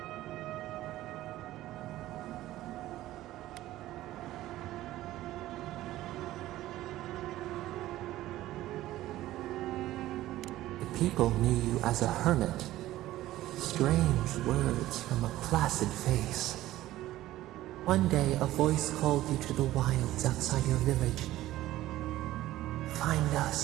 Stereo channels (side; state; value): left; quieter; 15.3 dB